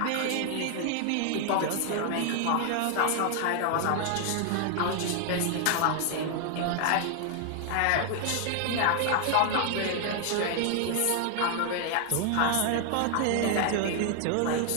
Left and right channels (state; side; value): different; both; correlation 0.00